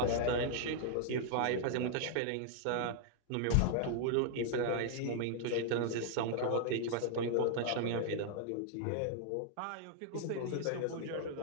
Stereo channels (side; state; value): both; different; correlation 0.00